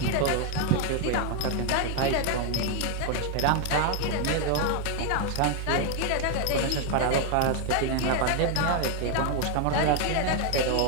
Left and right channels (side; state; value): both; different; correlation 0.01